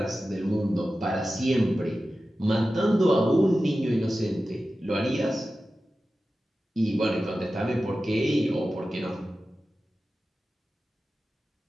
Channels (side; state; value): both; normal; correlation 0.94